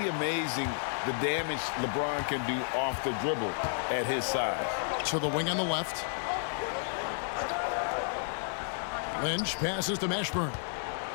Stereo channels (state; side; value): silent; right; digital silence